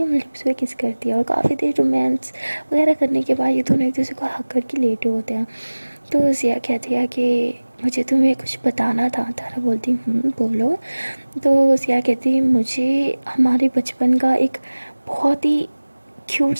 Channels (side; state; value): both; inverted; correlation -1.00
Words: लिप्स पे किस करती है और काफ़ी देर रोमांस वगैरह करने के बाद ये दोनों एक दूसरे को हक करके लेटे होते हैं। तो सिया कहती है कि मुझे तुम्हें कुछ बताना था। तारा बोलती बोलो। तो सिया कहती मुझे हमारे बचपन का एक बहुत ही क्यूट